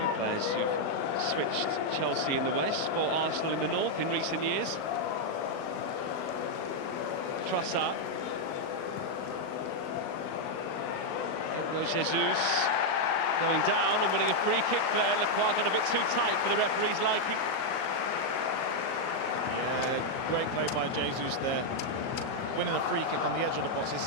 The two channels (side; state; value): right; late; 38 ms